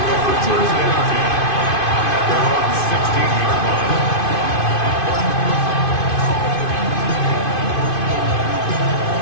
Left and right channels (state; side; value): late; right; 2.5 ms